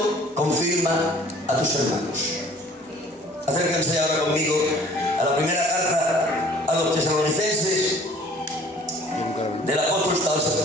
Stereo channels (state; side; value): normal; both; correlation 0.52